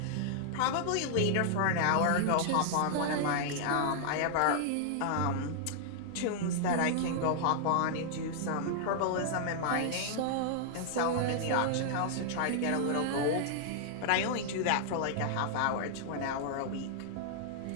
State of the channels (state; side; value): different; both; correlation -0.01